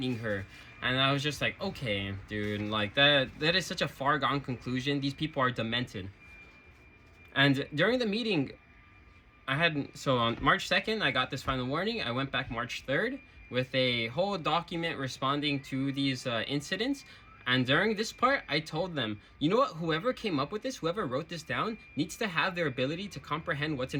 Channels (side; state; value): both; identical; correlation 1.00